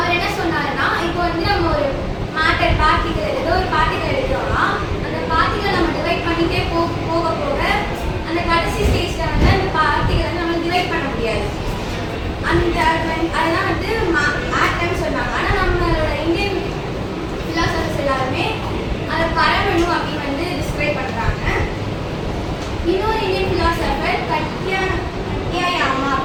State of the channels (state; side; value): identical; both; correlation 1.00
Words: என்ன சொன்னாருன்னா, இப்போ வந்து நம்ம ஒரு மேட்டர் பார்ட்டிகல் ஏதோ ஒரு பார்ட்டிகல் எடுக்கிறோம்னா அந்த பார்ட்டிகல் நம்ம டிவைட் பண்ணிட்டே போக போக அந்த கடைசி ஸ்டேஜ்ல வந்து அந்த பார்ட்டிகல் வந்து நம்ம டிவைட் பண்ண முடியாது. அந்த அதெல்லாம் வந்து ஆட்டம் சொன்னாங்க. ஆனால் நம்மளோட இந்தியன் ஃபிலாசபர்ஸ் எல்லாருமே அதை பரமணு அப்படின்னு வந்து டிஸ்கிரைப் பண்றாங்க. இன்னொரு இந்தியன் ஃபிலாசபர் கட்யாயாமா